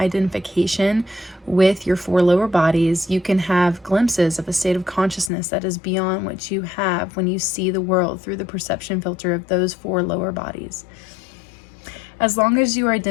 with your four lower bodies, you can have glimpses of a state of consciousness that is beyond what you have when you see the world through the perception filter of those four lower bodies. As long as you are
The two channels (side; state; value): right; drops out; at 5.3 s